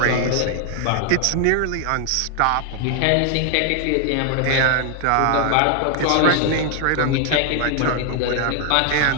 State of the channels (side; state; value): both; different; correlation 0.00